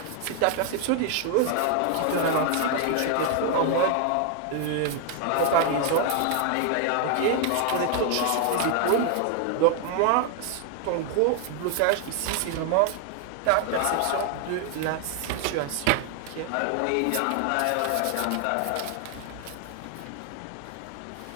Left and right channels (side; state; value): both; different; correlation 0.00